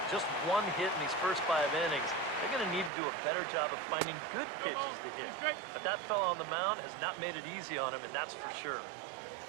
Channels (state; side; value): drops out; left; at 2.9 s